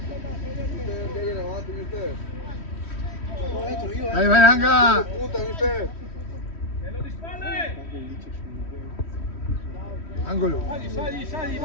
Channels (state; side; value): late; right; 3.1 ms